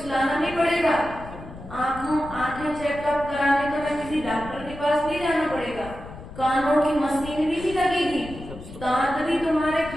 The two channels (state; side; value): noise; left; rumble, 14 dB below the sound